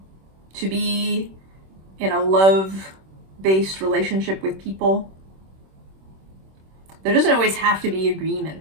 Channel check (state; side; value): late; left; 26 ms